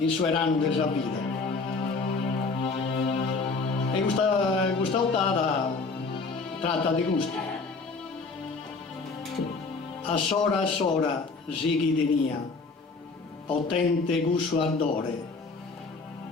suo anno della vita. E questa ottava tratta di gusto. A sora sighi tenia, potente gusto ardore,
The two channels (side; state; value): right; quieter; 4.1 dB